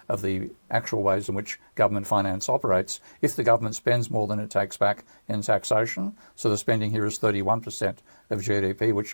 of the actual ways in which government finance operates. If the government spends more than it takes back in taxation, so the spending here is 31% of GDP,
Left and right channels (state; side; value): inverted; both; correlation -1.00